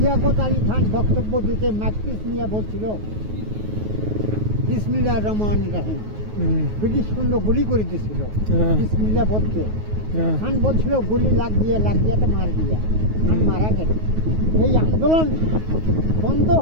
খান বক্তব্য দিতে মাকপিস নিয়ে বলছিল বিসমিল্লাহির রহমানির রহিম। ব্রিটিশ সৈন্য গুলি করে দিয়েছিল বিসমিল্লাহ বলতে। খান বলছিল গুলি লাগ দিয়া তো মার দিয়া। খান মারা গেল। এই আন্দোলন বন্ধ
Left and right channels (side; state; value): left; late; 9.4 ms